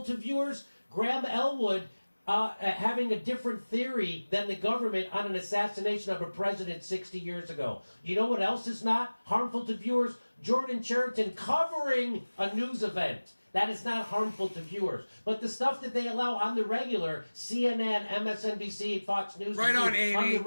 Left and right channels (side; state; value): both; inverted; correlation -1.00